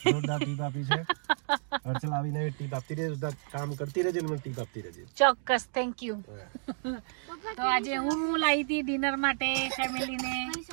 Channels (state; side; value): silent; left; digital silence